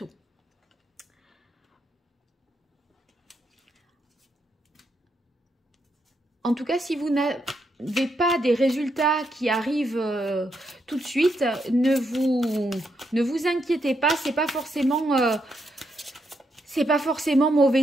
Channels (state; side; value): normal; both; correlation 0.79